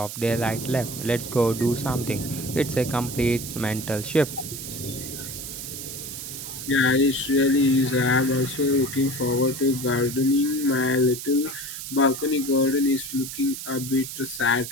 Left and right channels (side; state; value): right; noise; hiss, 8 dB below the sound